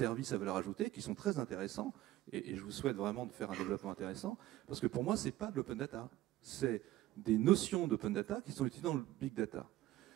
à valeur ajoutée, qui sont très intéressants, et je vous souhaite vraiment de faire un développement intéressant, parce que pour moi, c'est pas de l'open data, c'est des notions d'open data qui sont utilisées dans le big data.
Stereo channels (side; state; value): left; quieter; 15.3 dB